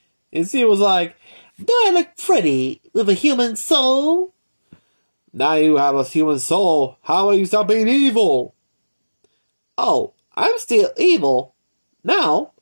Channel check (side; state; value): both; inverted; correlation -1.00